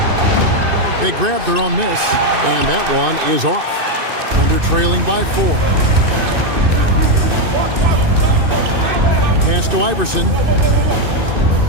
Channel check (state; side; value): late; left; 2.6 ms